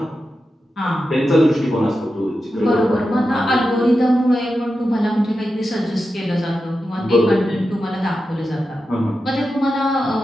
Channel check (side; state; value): both; normal; correlation 0.90